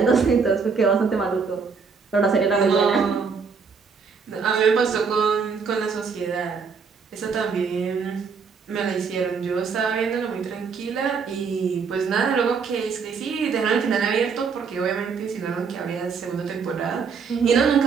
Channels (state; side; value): quieter; left; 5.5 dB